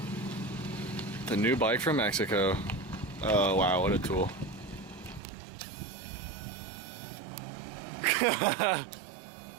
The new bike from Mexico. Oh, wow, what a tool.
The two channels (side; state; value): left; drops out; at 5.2 s